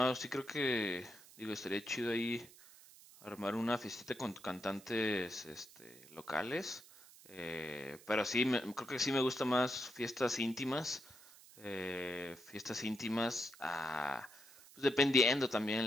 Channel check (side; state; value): right; noise; hiss, 21 dB below the sound